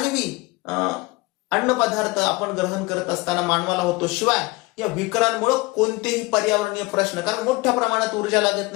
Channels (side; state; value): right; quieter; 23.2 dB